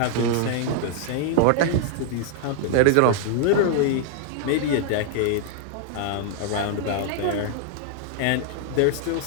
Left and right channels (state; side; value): different; both; correlation -0.01